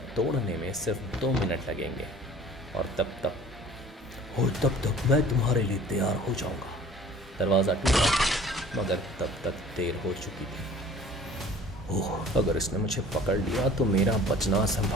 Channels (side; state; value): both; normal; correlation 0.48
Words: तोड़ने में सिर्फ 2 मिनट लगेंगे और तब तक मैं तुम्हारे लिए तैयार हो जाऊंगा। दरवाज़ा टूटा, मगर तब तक देर हो चुकी थी। ओह, अगर इसने मुझे पकड़ लिया तो मेरा बचना